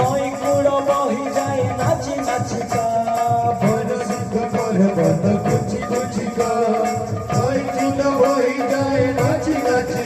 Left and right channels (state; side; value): identical; both; correlation 1.00